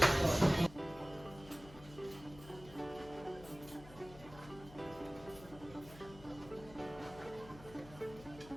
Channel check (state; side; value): noise; left; hum, 18 dB below the sound